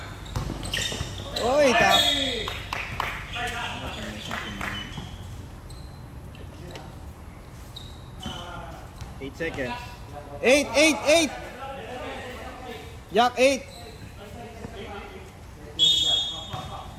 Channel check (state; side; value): identical; both; correlation 1.00